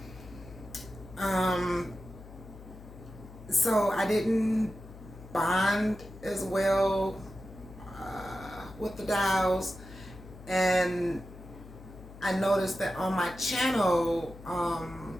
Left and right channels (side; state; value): left; noise; hum, 17 dB below the sound